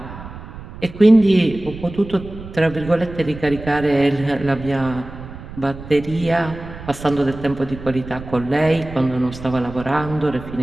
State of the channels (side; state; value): right; noise; rumble, 13 dB below the sound